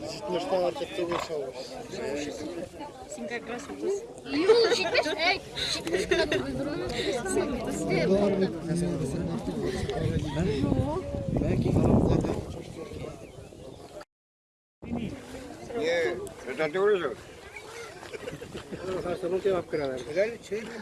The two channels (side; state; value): both; identical; correlation 1.00